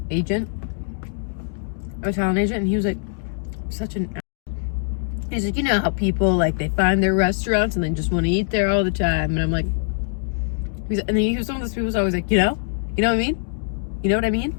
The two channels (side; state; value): right; silent; digital silence